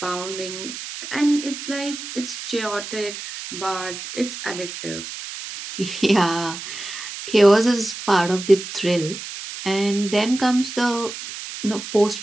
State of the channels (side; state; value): right; noise; hiss, 9 dB below the sound